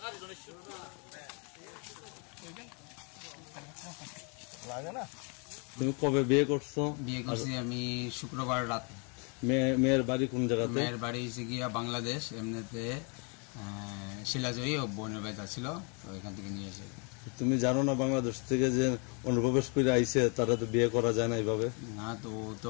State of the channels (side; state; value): right; quieter; 35.6 dB